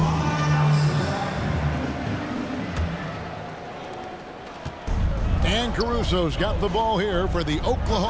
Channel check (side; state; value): both; identical; correlation 1.00